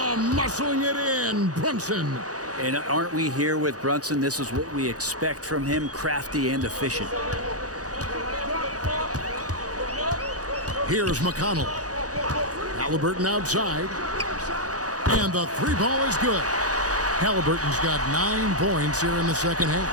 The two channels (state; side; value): late; left; 0.67 ms